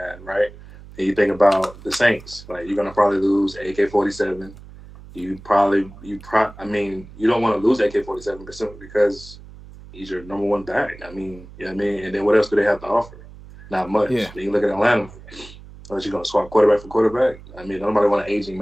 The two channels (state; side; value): noise; right; hum, 18 dB below the sound